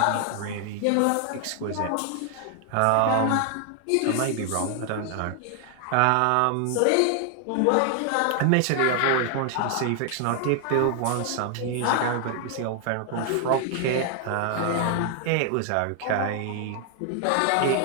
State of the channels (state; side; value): different; both; correlation 0.00